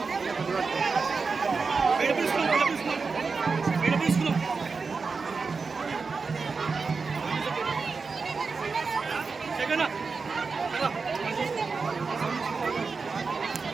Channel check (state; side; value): quieter; left; 4.7 dB